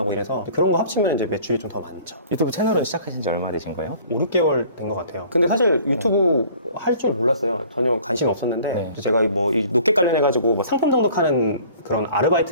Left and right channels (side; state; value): both; inverted; correlation -0.51